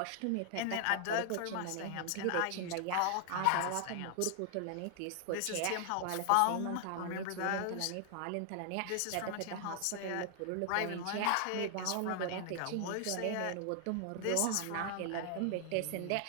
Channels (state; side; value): different; both; correlation 0.00